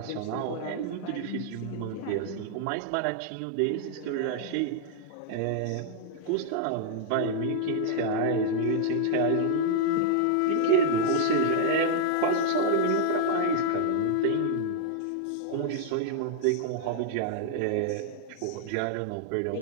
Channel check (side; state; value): both; different; correlation -0.01